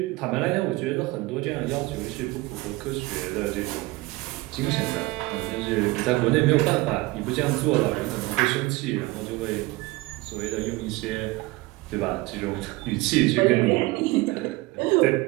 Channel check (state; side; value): quieter; left; 21.2 dB